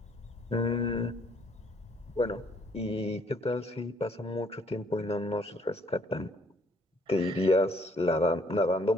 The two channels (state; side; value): normal; both; correlation 0.64